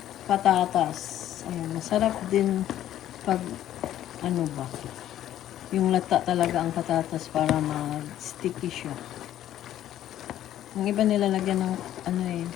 patatas. Ayan. Masarap din pag, yung lata talaga ang patatas para mag-sticky siya. Ang iba nilalagyan ng,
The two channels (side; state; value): right; quieter; 12.1 dB